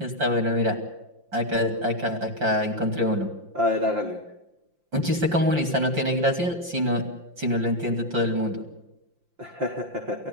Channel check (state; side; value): late; left; 5.8 ms